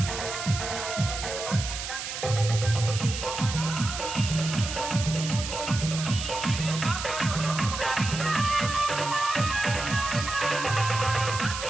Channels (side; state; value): right; noise; hiss, 6 dB below the sound